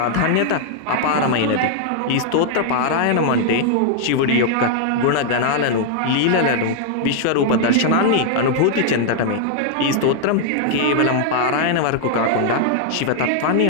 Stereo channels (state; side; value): different; both; correlation -0.01